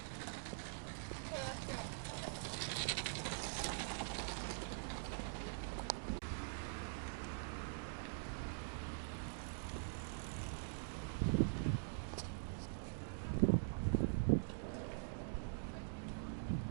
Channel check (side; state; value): left; silent; digital silence